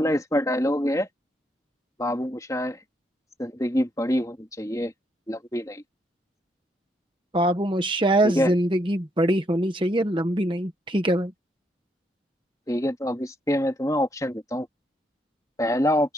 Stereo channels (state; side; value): normal; both; correlation 0.75